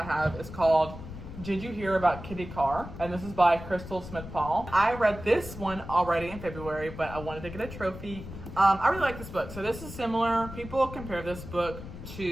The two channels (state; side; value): noise; left; rumble, 12 dB below the sound